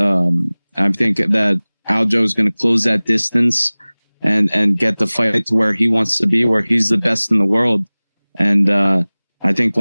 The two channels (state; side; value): inverted; both; correlation -1.00